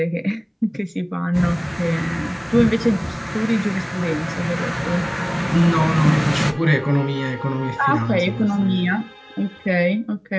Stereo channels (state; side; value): identical; both; correlation 1.00